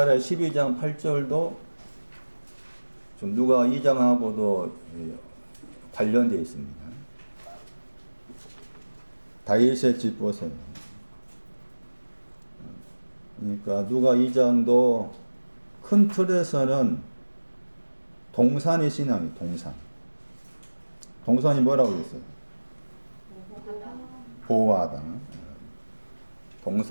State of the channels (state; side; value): inverted; both; correlation -1.00